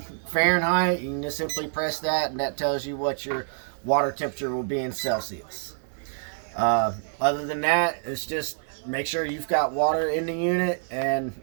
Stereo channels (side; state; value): left; silent; digital silence